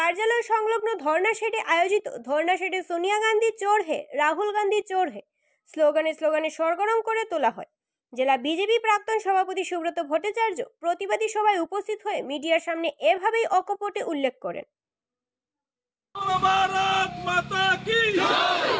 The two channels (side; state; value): both; identical; correlation 1.00